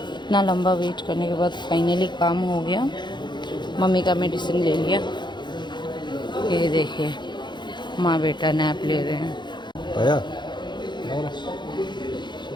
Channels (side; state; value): right; late; 0.22 ms